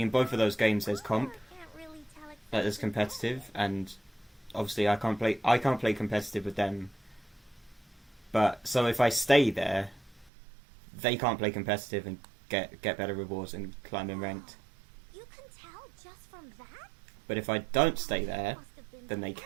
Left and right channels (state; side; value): drops out; left; at 10.3 s